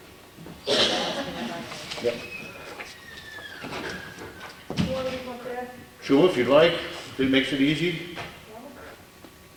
Yep. You want to come up there? Sure, if you'd like, if it makes it easy,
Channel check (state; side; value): identical; both; correlation 1.00